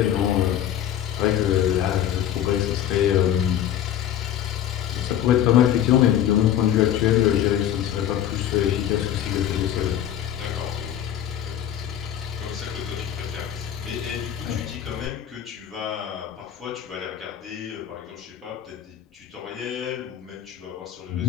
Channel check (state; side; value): quieter; right; 10.7 dB